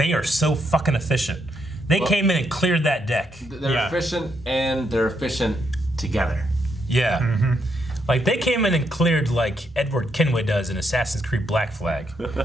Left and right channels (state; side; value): normal; both; correlation 0.78